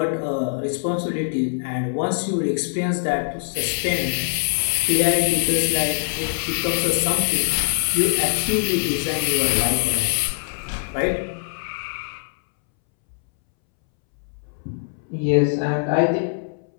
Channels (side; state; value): right; silent; 63 dB below the other